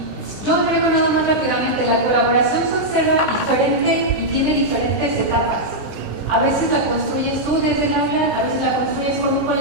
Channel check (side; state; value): right; late; 20 ms